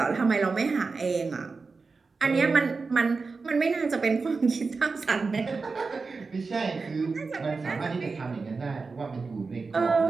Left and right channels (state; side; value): quieter; left; 4.4 dB